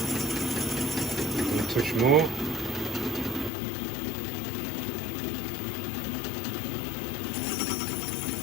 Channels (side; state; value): right; drops out; at 3.5 s